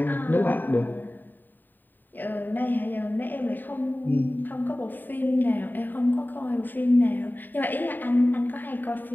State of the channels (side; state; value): right; late; 0.090 ms